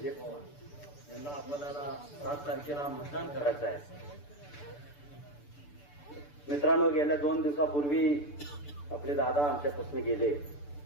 पवार यांना आपल्याला 7 तारखेला मतदान करायचं आहे. मित्रांनो, गेल्या 2 दिवसापूर्वी आपले दादा आमच्यापासून गेले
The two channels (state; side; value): late; right; 6.9 ms